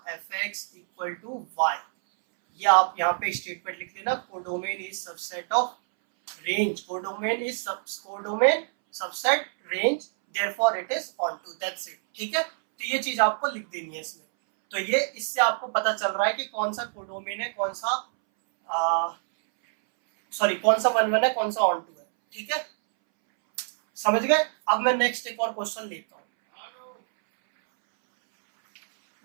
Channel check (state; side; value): silent; left; 61 dB below the other